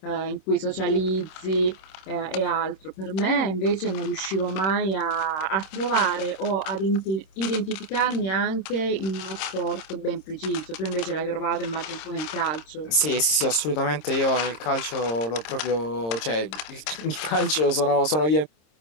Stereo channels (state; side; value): late; right; 26 ms